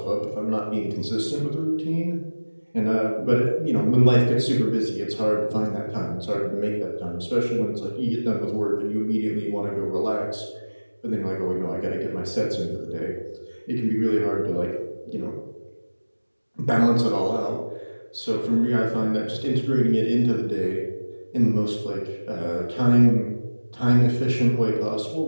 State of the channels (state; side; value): inverted; both; correlation -1.00